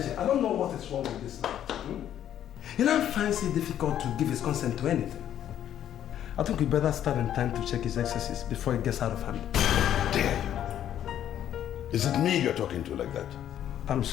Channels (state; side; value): quieter; right; 10.7 dB